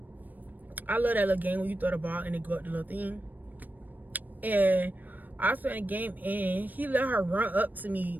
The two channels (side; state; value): left; late; 0.087 ms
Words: I love that little game when you throw the ball and it go up the little thing. And I was playing a game and he let her run up to me